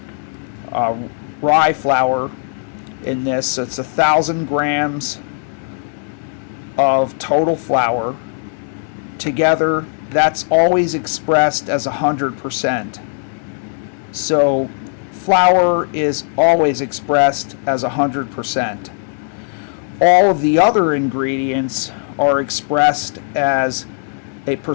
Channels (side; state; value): right; silent; 67 dB below the other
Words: rye flour in this. So it's 1,000 grams of total flour. Together, that's always expressed as 100%. So flour is always expressed as 100%. All of the other ingredients are expressed as a